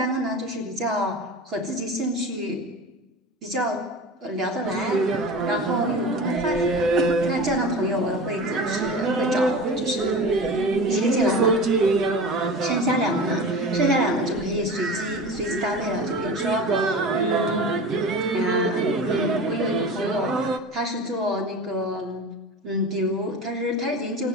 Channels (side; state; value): both; normal; correlation 0.32